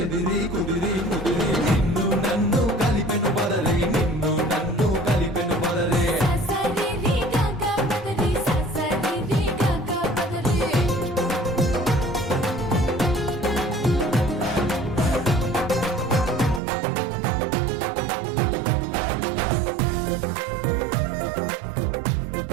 కుదిరి ముదిరి నిన్ను నన్ను కలిపెను బదరి నిన్ను నన్ను కలిపెను బదరే ససరి రి గగ పదరి ససరి రి గగ పదరి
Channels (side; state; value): left; drops out; at 16.6 s